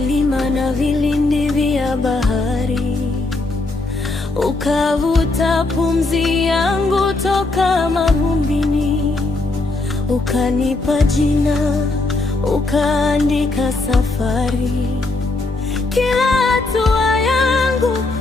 na vilindi vya bahari, ukavuta pumzi yangu toka mavumbini, ukanipa jina, ukaandika safari. Kila hatua yangu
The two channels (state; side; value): quieter; right; 3.2 dB